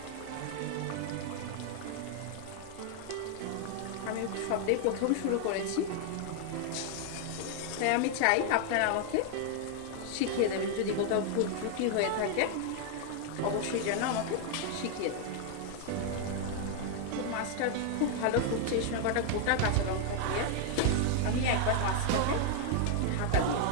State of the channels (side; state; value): both; different; correlation 0.00